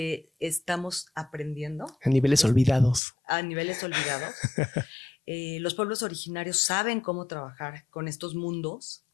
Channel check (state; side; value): drops out; right; at 3.0 s